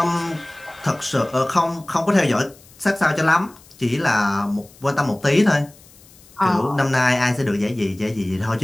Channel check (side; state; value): left; noise; hiss, 25 dB below the sound